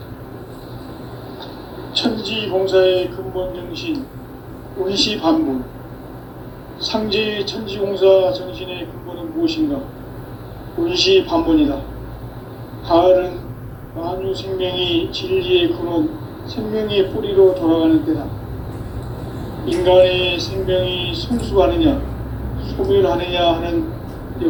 천지공사의 근본 정신 운시반분. 상제의 천지공사 정신의 근본은 무엇인가? 운시반분이다. 가을은 만유 생명이 진리의 근원, 생명의 뿌리로 돌아가는 때다. 인간의 생명이 성숙하느냐, 소멸하느냐 하는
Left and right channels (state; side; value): identical; both; correlation 1.00